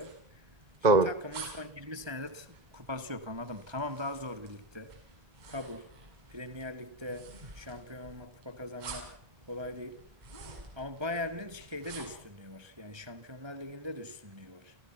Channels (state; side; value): late; left; 1.3 ms